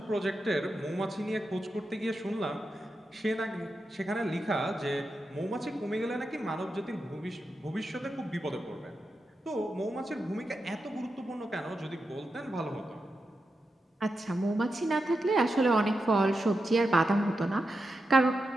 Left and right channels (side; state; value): both; normal; correlation 0.88